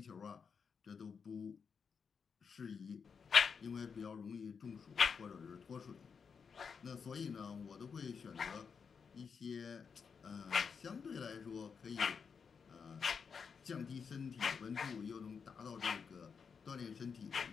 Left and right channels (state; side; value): quieter; right; 6.1 dB